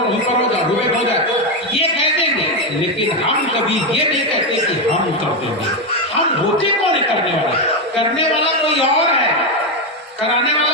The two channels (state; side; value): normal; both; correlation 0.08